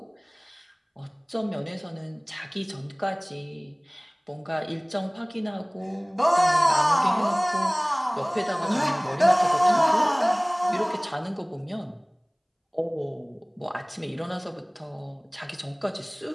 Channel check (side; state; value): both; identical; correlation 1.00